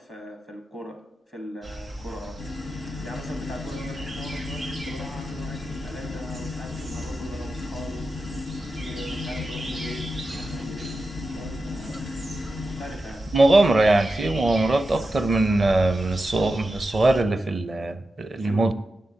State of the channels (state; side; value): normal; both; correlation 0.91